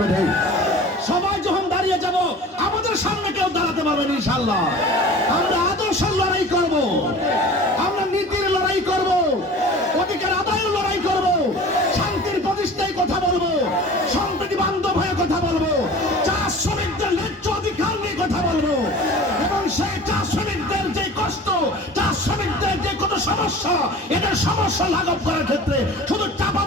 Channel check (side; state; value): both; normal; correlation 0.41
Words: বেঠিক? সবাই যখন দাঁড়িয়ে যাব আমাদের সামনে কেউ দাঁড়াতে পারবে না ইনশাআল্লাহ। আমরা আদর্শের লড়াই করব, আমরা নীতির লড়াই করব, অধিকার আদায়ের লড়াই করব, শান্তির প্রতিষ্ঠায় কথা বলবো, সম্প্রীতি বান্ধব হয়ে কথা বলবো, চা শ্রমিকদের ন্যায্য অধিকার নিয়ে কথা বলবো, এবং সেই চা শ্রমিকদের যে কষ্ট, চা শ্রমিকদের যে কোনো সমস্যা, এদের সমস্যা লাঘব করার ক্ষেত্রে শুধু